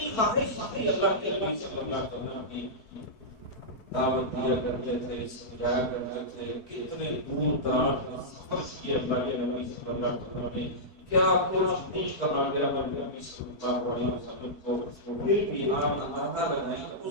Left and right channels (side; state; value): right; late; 4.5 ms